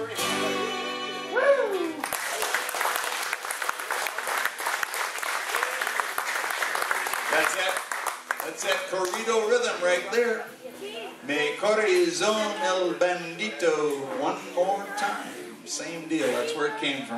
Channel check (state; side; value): identical; both; correlation 1.00